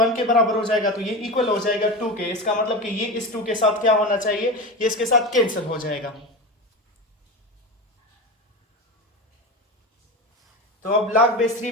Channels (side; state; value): both; normal; correlation 0.24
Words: के बराबर हो जाएगा तो ये इक्वल हो जाएगा 2 के। इसका मतलब कि ये इस 2 के साथ क्या होना चाहिए, ये इसके साथ कैंसिल हो जाएगा। तो अब log base